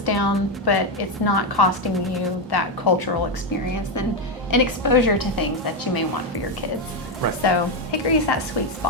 down, but it's not costing you that cultural experience and exposure to things that you may want for your kids. Right. So Hickory is that sweet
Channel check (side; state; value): both; normal; correlation 0.07